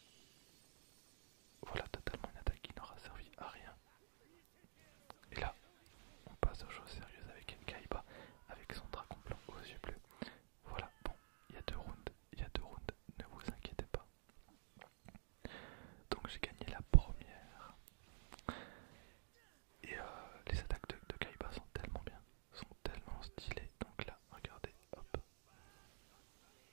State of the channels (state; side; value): silent; left; digital silence